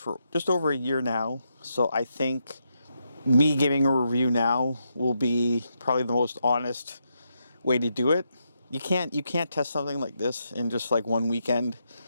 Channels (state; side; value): inverted; both; correlation -0.82